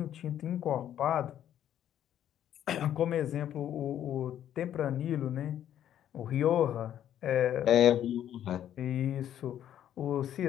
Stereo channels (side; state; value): right; quieter; 10.8 dB